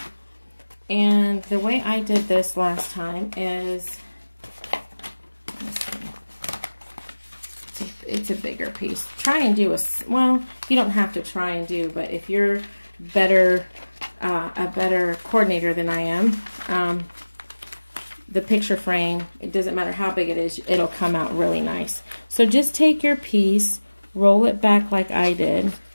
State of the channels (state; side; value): inverted; both; correlation -1.00